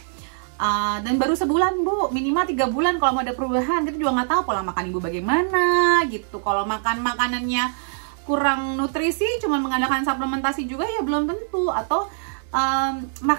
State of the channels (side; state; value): left; silent; 63 dB below the other